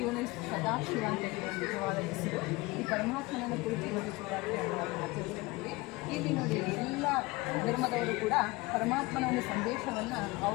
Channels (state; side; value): quieter; right; 22.5 dB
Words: ಇವನು ಸದಾಶಿವ ಅಂತ ಹೇಳುವ ನಿಜವಾದ ಹೆಸರು. ಈ ಪರಮಾತ್ಮನನ್ನು ಕುರಿತು ಇವತ್ತು ಶಿವರಾತ್ರಿಯನ್ನು ಆಚರಿಸ್ತೀವಿ. ಇಲ್ಲಿ ನೋಡಿ, ಎಲ್ಲ ಧರ್ಮದವರು ಕೂಡ ಪರಮಾತ್ಮನ ಒಂದು ಸಂದೇಶವನ್ನು